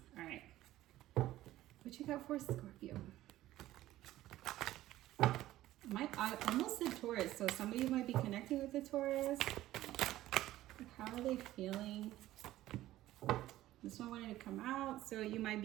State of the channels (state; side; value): quieter; left; 14.9 dB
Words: All right. What you got for Scorpio? I almost said Taurus, so some of you might be connecting with the Taurus. How are they feeling? This one wanted to come out, so you might